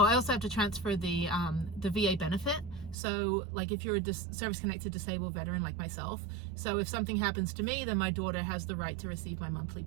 I also have to transfer the VA benefit. So, like, if you're a service-connected disabled veteran like myself, so if something happens to me, then my daughter has the right to receive my monthly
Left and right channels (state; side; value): drops out; left; at 3.0 s